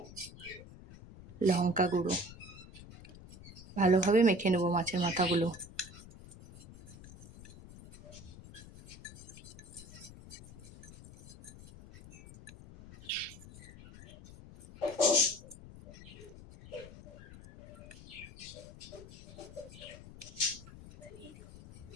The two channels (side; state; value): left; noise; rumble, 16 dB below the sound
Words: লঙ্কা গুঁড়ো। ভালোভাবে মেখে নেব মাছের মাথাগুলো।